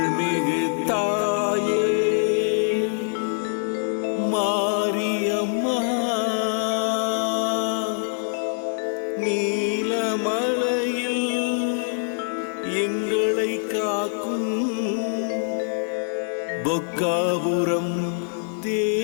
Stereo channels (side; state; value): right; silent; 62 dB below the other